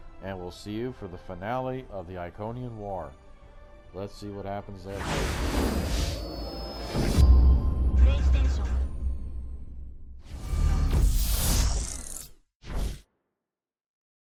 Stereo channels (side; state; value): both; identical; correlation 1.00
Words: and we'll see you for the finale of the Iconian War. Let's see what happens there.